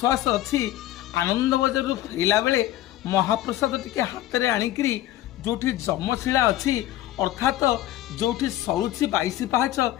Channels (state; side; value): quieter; right; 14.1 dB